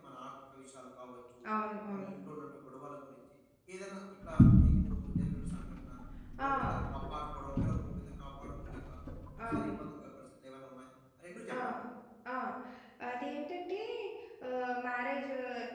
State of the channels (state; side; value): identical; both; correlation 1.00